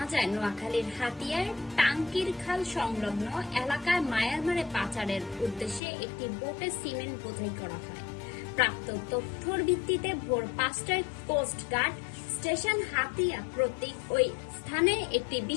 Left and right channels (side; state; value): right; drops out; at 5.8 s